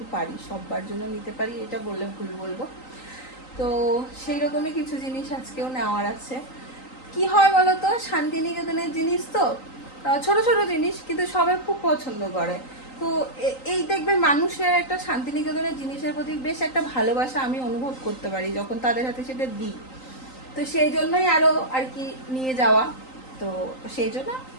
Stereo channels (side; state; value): right; late; 3.9 ms